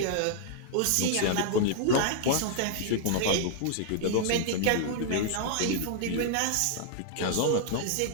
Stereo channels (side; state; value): both; different; correlation -0.01